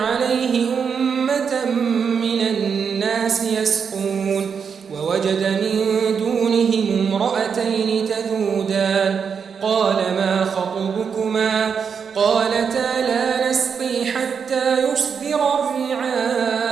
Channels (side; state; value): left; quieter; 6.5 dB